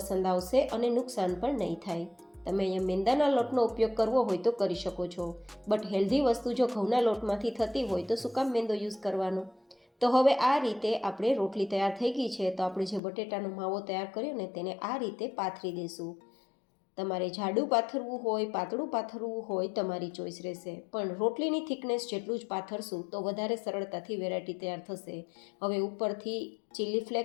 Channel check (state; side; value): drops out; right; at 13.0 s